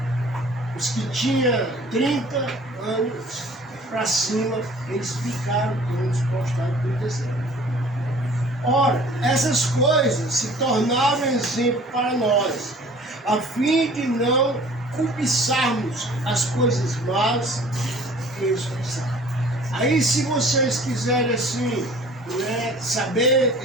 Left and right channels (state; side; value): normal; both; correlation 0.50